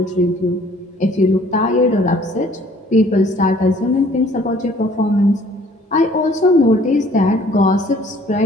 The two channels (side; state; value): both; normal; correlation 0.56